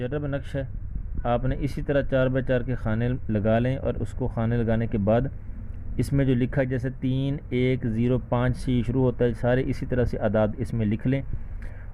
نقش ہے۔ آپ نے اسی طرح 4x4 کے خانے لگا لیں، اور اس کو خانے لگانے کے بعد اس میں جو لکھا ہے جیسے 3 1 0 5 سے شروع ہوتا ہے، سارے اسی طرح سے اعداد اس میں لکھ لیں،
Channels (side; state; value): both; identical; correlation 1.00